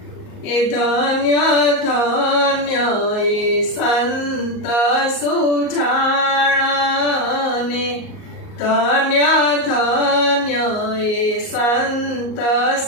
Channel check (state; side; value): late; right; 38 ms